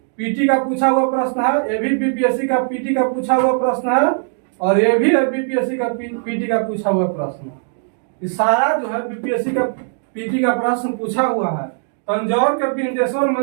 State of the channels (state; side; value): silent; left; digital silence